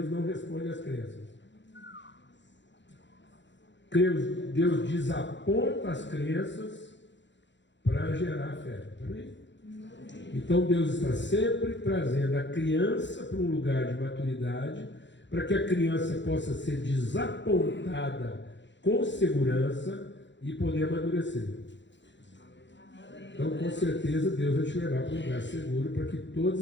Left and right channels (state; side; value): late; right; 0.53 ms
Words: não responde às crenças. Deus desaponta as crenças para gerar fé. Amém? Então Deus está sempre trazendo a criança para um lugar de maturidade, para que a criança possa ser desapontada com segurança e poder amadurecer. Então, com certeza, Deus vai te levar para um lugar seguro para que todas